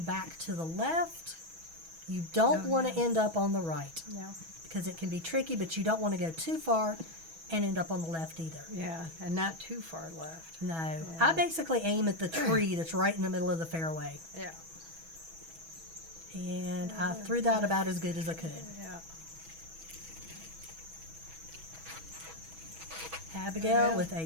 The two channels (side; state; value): left; late; 6.1 ms